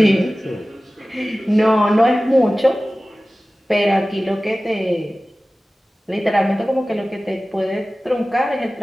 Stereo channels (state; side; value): normal; both; correlation 0.97